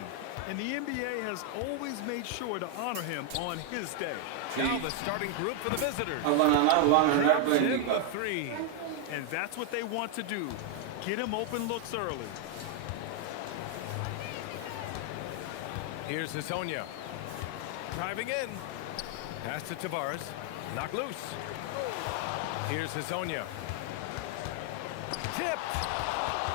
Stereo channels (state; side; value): different; both; correlation 0.00